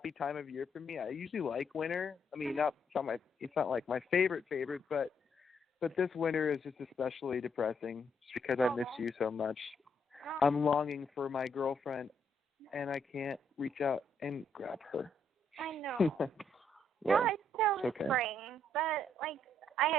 time of year for me. I usually like winter. I mean, it's not like my favorite, but this winter is just especially depressing just because I miss you so much. I'm longing for my girlfriend, and I can't reach out and grab her. I know. Well, no, it's still okay. spring, but like I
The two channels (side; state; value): both; normal; correlation 0.73